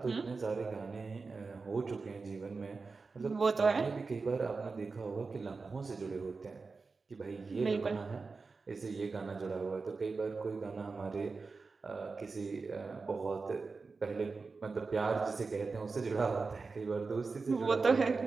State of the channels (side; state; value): left; quieter; 4.3 dB